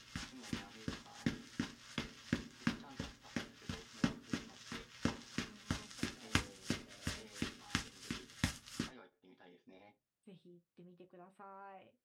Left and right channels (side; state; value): both; identical; correlation 1.00